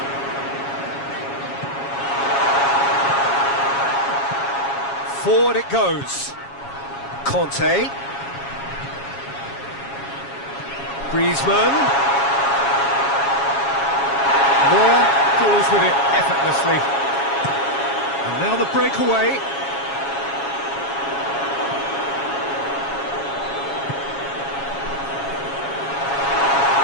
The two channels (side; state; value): right; late; 7.2 ms